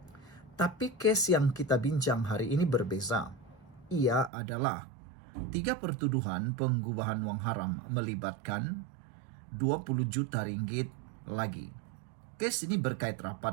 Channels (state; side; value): drops out; left; at 4.3 s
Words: Tapi kes yang kita bincang hari ini berbeza. Ia adalah 3 pertuduhan pengubahan wang haram melibatkan 20 juta ringgit lagi. Kes ini berkait